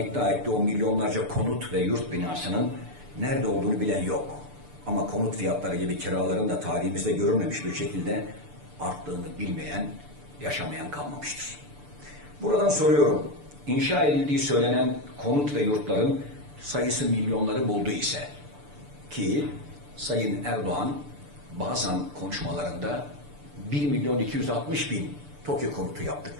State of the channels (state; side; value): late; left; 6.8 ms